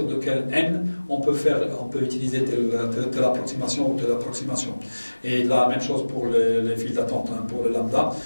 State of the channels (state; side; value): inverted; both; correlation -1.00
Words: de quel n on peut utiliser telle approximation ou telle approximation. Et la même chose pour les files d'attente, pour le lambda.